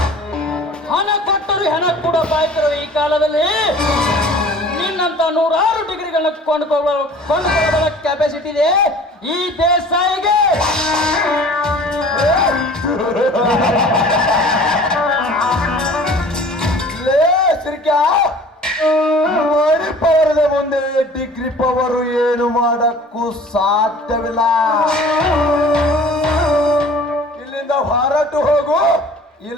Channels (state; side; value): normal; both; correlation 0.46